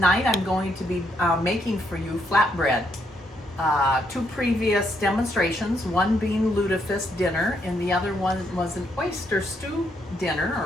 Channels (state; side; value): normal; both; correlation 0.75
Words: I'm going to be making for you flatbread. Two previous demonstrations, one being lutefisk dinner and the other one was an oyster stew dinner